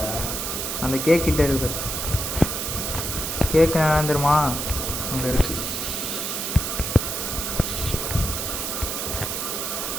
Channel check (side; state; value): right; noise; hiss, 2 dB below the sound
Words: அந்த கேக் கிட்ட இருக்கு. கேக்கு நான் தெரியுமா? அங்கே இருக்கு.